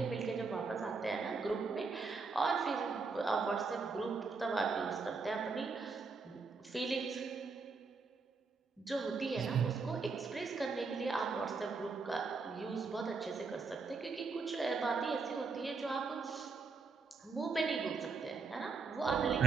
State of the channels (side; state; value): left; quieter; 4.5 dB